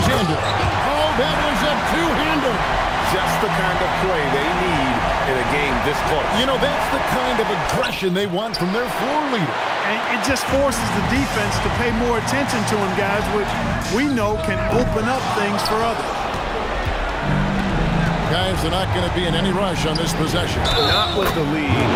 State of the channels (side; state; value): both; identical; correlation 1.00